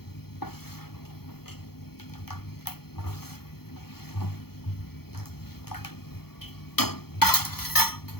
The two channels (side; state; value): right; late; 0.95 ms